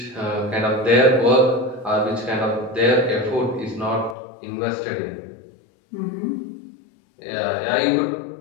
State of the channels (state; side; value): drops out; right; at 4.2 s